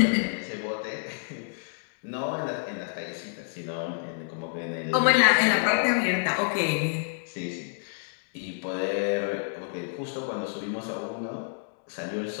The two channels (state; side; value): silent; right; digital silence